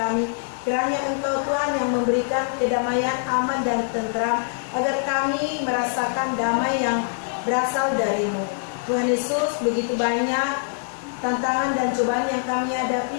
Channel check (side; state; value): right; silent; digital silence